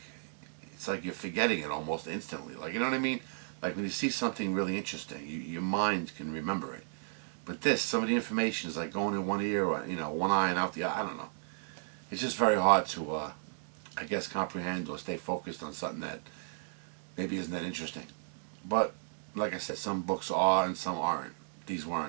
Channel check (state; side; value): silent; left; digital silence